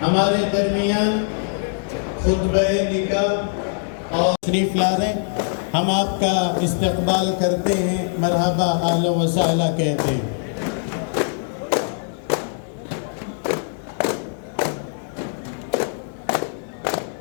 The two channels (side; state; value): right; silent; digital silence